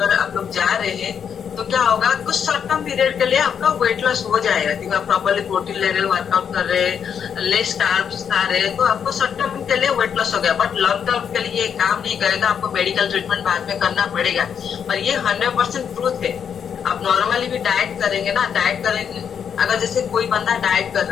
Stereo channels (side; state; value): right; quieter; 7.6 dB